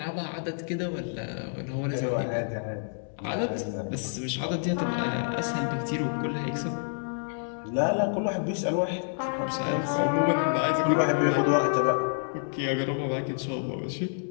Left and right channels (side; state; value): right; silent; digital silence